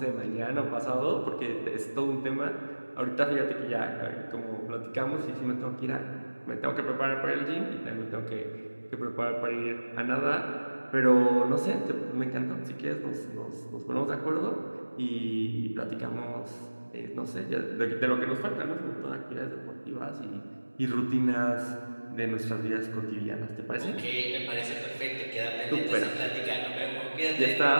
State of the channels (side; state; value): both; inverted; correlation -1.00